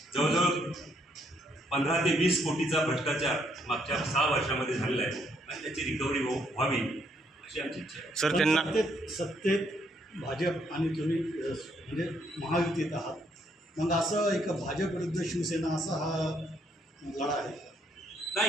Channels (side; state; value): both; normal; correlation 0.71